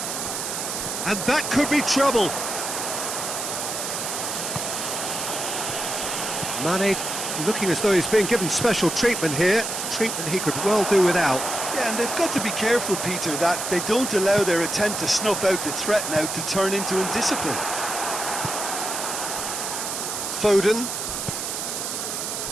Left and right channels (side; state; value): right; noise; hiss, 4 dB below the sound